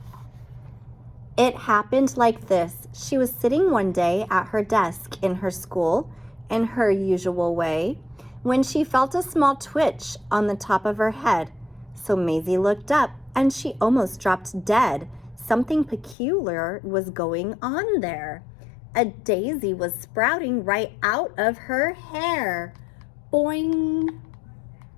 It happened like this. She was sitting one day at her desk in her school, in her usual way, when she felt a small twitch on the top of her head. So Mayzie looked up, and she almost dropped dead. Something peculiar was going on there. A daisy was sprouting right out of her hair. Boing!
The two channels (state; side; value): drops out; right; at 16.2 s